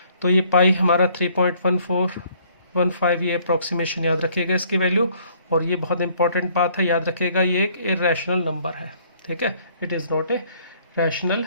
तो ये पाई हमारा 3.1415 ये अप्रॉक्सीमेशन याद रखिएगा इसकी वैल्यू। और ये बहुत इंपॉर्टेंट बात है, याद रखिएगा ये एक इरेशनल नंबर है। ठीक है, it is not a rational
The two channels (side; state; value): both; inverted; correlation -0.62